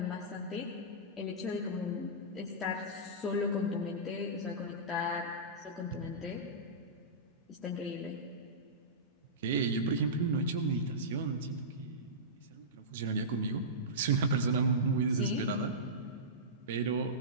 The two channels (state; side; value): normal; both; correlation -0.17